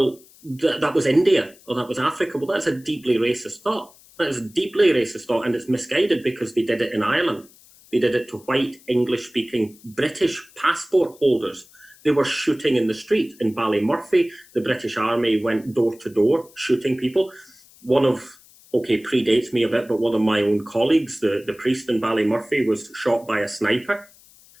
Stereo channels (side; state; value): left; noise; hiss, 26 dB below the sound